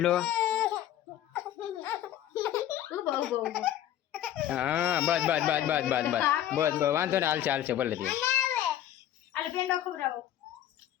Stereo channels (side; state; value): right; quieter; 11.8 dB